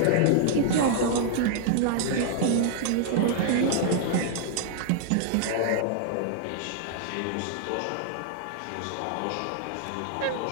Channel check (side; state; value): both; different; correlation -0.01